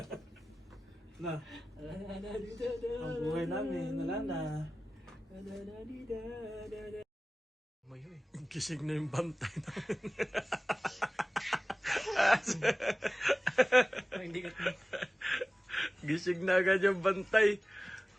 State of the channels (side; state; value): both; normal; correlation 0.97